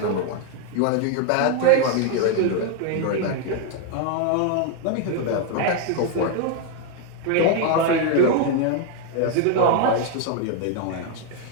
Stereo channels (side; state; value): both; different; correlation 0.01